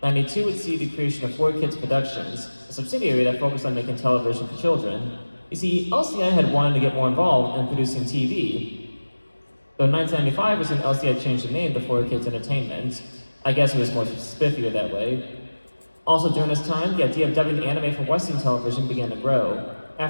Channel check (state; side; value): inverted; both; correlation -1.00